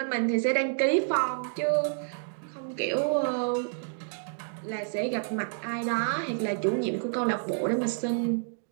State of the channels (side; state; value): left; silent; digital silence